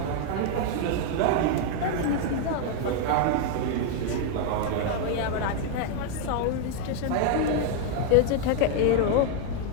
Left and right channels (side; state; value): both; different; correlation 0.00